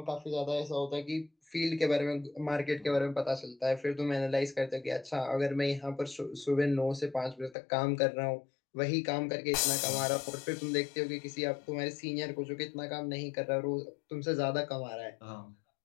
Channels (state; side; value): drops out; right; at 7.6 s